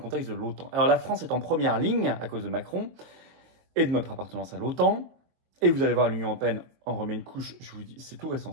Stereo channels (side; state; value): left; late; 23 ms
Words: de l'OTAN. Alors la France est en première ligne à cause de Macron et de notre appartenance à l'OTAN. Et vous allez voir, l'Union européenne en remet une couche, je vous dis, c'est tout récent